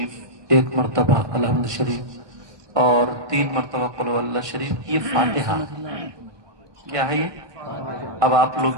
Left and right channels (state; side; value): late; left; 1.5 ms